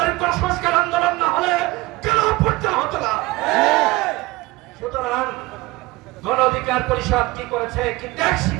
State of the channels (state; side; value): quieter; left; 20.9 dB